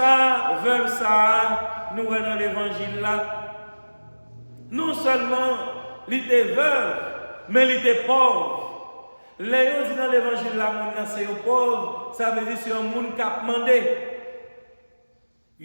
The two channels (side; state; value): both; inverted; correlation -1.00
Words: vers ça, nous sommes dans l'évangile là. Non seulement il était veuve, mais il était pauvre. Les gens disent dans l'évangile là, c'est un pauvre, ça veut dire que c'est un monde qui a demandé.